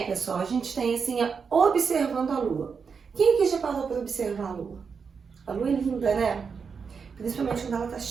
pessoal, a gente tem assim, observando a lua. Quem aqui já parou para observar a lua? A lua é linda, né? Principalmente quando ela tá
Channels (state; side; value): quieter; left; 5.8 dB